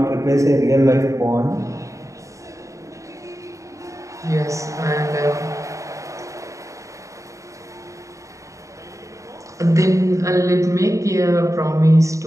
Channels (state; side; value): late; left; 0.15 ms